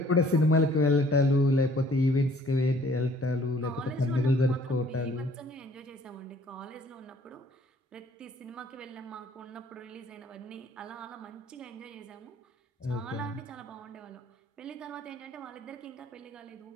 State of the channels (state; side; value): normal; both; correlation 0.58